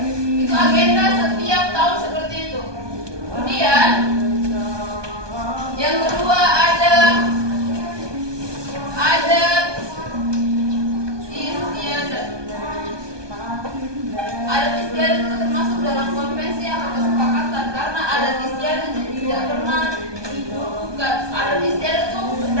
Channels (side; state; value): left; late; 1.2 ms